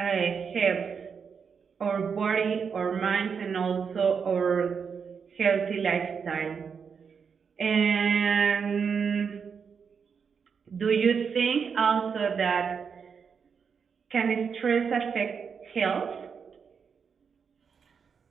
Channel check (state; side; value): quieter; left; 6.3 dB